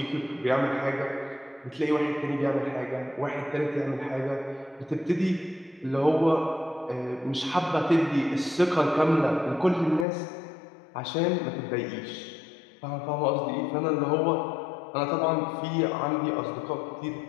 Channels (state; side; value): drops out; right; at 10.1 s